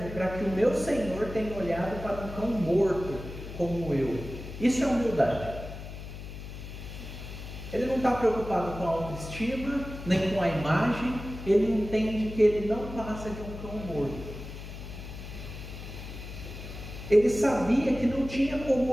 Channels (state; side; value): noise; left; hum, 11 dB below the sound